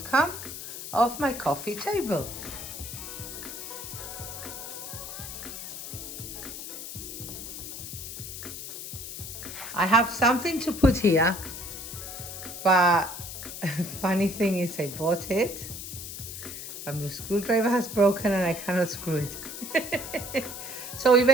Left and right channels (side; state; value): left; noise; hiss, 9 dB below the sound